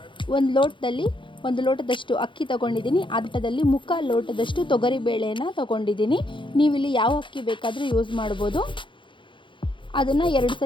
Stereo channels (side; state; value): right; late; 0.24 ms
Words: ಒಂದು ಲೋಟದಷ್ಟು ಅಕ್ಕಿ ತಗೊಂಡಿದ್ದೀನಿ. ಅದರಲ್ಲಿ ಮುಕ್ಕಾಲು ಲೋಟದಷ್ಟು ತೊಗರಿಬೇಳೆಯನ್ನು ತಗೊಂಡಿದ್ದೀನಿ. ನೀವಿಲ್ಲಿ ಯಾವ ಅಕ್ಕಿ ಬೇಕಾದರೂ ಯೂಸ್ ಮಾಡ್ಬೋದು. ಅದನ್ನು 2